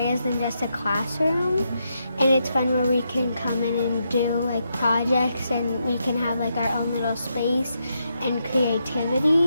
than just a classroom, and it's fun where we can come in and do like projects, and we can have like our own little space and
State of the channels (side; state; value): both; inverted; correlation -0.82